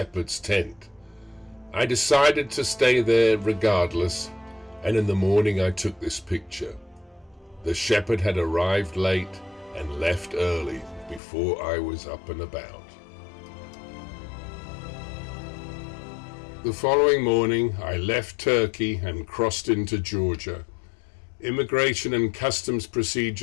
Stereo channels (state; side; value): drops out; right; at 11.2 s